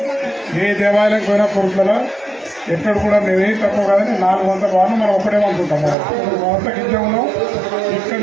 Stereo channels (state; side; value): drops out; left; at 6.0 s